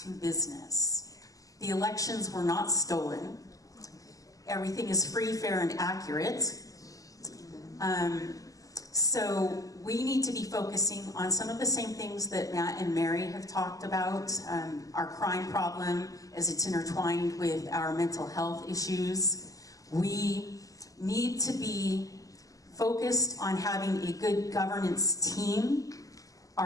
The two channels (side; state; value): right; late; 0.17 ms